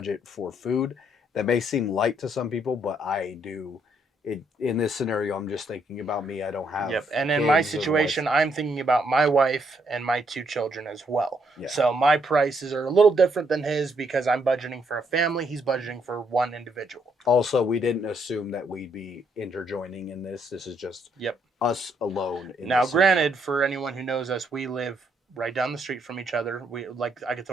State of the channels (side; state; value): both; normal; correlation 0.73